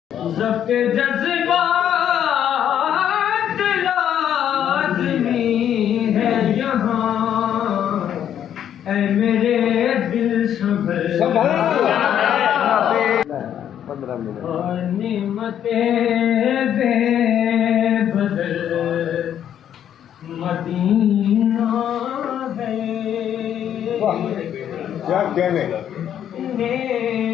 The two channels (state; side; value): quieter; right; 9.9 dB